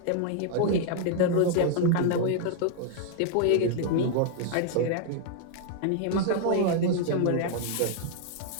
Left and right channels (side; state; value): both; different; correlation 0.00